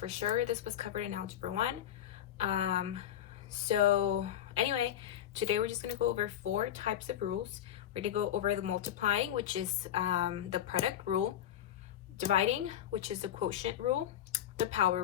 sure this was covered in Algebra 1. So anyway, today we're just going to go over 4 types of rules. We're going to go over the multiplying, which is the product rule, dividing, which is the quotient rule, the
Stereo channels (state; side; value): quieter; right; 11.0 dB